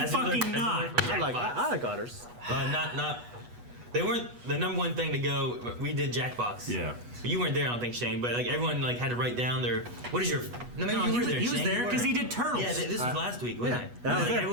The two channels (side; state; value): left; late; 8.2 ms